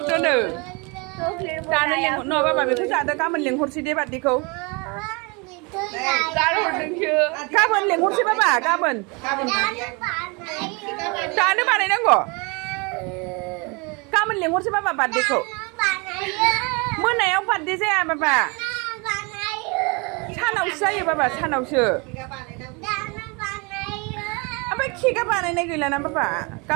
दानो लेंहर न बाबा बेखौ जादो गाबोन लेंहरसै दे बार्डेखौ गाबोन लेंहरसै बाबा गाबोन दानो बानायनांगौ गाबोन लेंहरसै बाबा बार्डेखौ मोनायाव बार्डे जाया बाबा सानावसो जायो बाबा सानावसो ओमफ्राय केकआ बानायनाय गैलाना बाबा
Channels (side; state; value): left; quieter; 29.9 dB